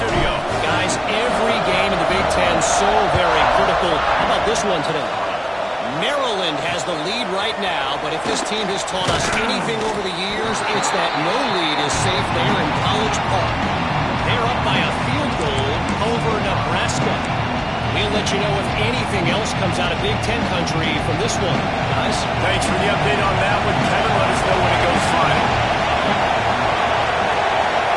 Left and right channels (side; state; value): both; identical; correlation 1.00